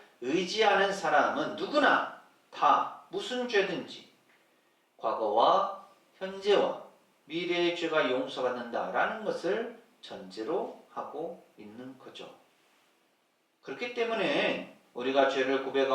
의지하는 사람은 누구나 다 무슨 죄든지 과거와 현재와 미래의 죄가 용서받는다라는 것을 전제로 하고 있는 거죠. 그렇기 때문에 우리가 죄를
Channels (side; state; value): both; identical; correlation 1.00